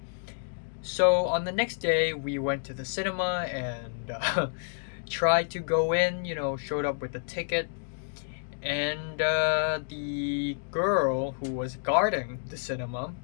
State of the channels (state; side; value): silent; right; digital silence